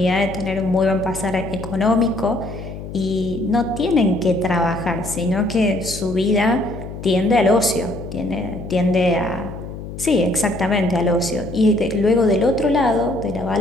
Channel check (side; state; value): left; noise; hum, 10 dB below the sound